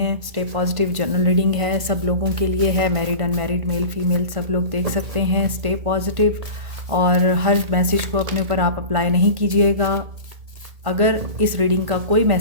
स्टे पॉजिटिव जनरल रीडिंग है, सब लोगों के लिए है, मैरिड अनमैरिड मेल फीमेल सब लोग देख सकते हैं। स्टे पॉजिटिव और हर मैसेज को अपने ऊपर आप अप्लाई नहीं कीजिएगा। अगर इस रीडिंग का कोई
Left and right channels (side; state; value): left; late; 1.5 ms